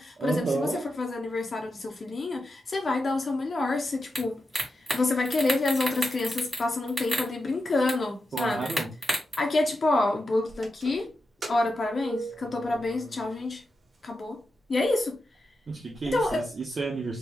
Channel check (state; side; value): normal; both; correlation 0.88